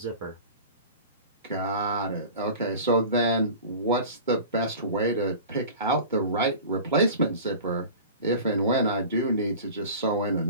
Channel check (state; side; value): inverted; both; correlation -0.38